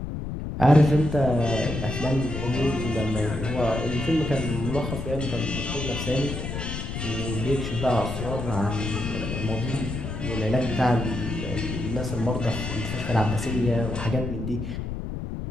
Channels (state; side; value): noise; left; rumble, 5 dB below the sound